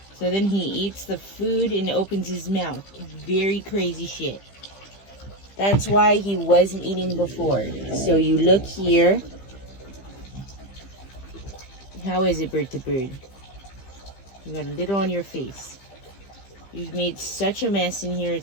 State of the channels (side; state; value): right; late; 15 ms